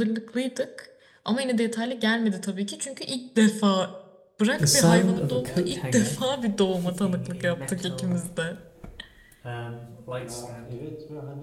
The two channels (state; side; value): identical; both; correlation 1.00